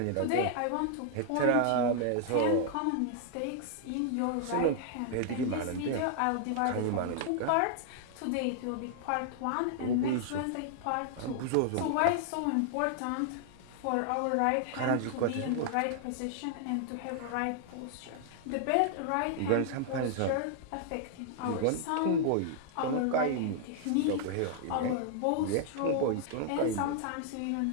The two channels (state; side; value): different; both; correlation 0.00